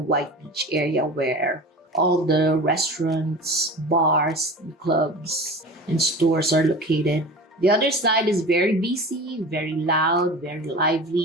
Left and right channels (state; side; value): normal; both; correlation 0.35